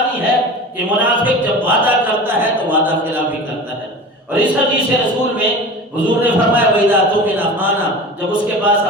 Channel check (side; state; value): both; normal; correlation 0.34